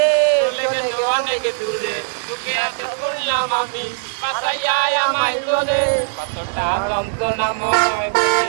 চলে গেল অনেক দূরে, তোকে এত বললাম আমি, বাসাইয়া আমায় তোলে। কতটা যন্ত্রণাময়,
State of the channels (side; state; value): left; silent; 66 dB below the other